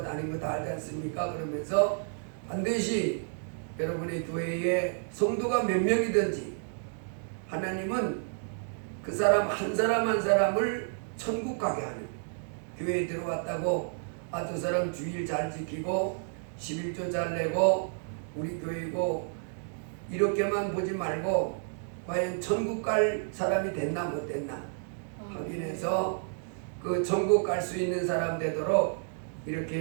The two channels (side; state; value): left; silent; digital silence